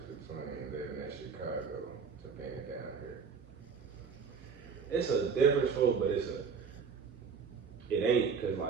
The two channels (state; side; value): quieter; left; 5.8 dB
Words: between living in Chicago to being down here? It's a difference, folks, but it ain't, cause